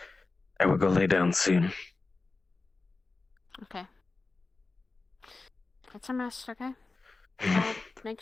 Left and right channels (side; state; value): right; quieter; 3.7 dB